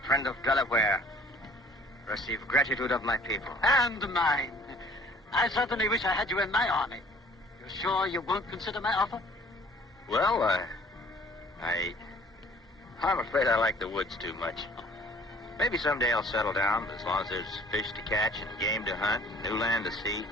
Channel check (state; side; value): normal; both; correlation 0.53